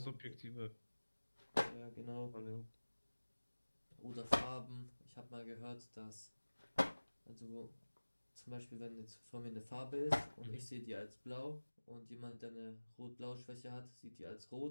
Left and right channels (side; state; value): both; inverted; correlation -1.00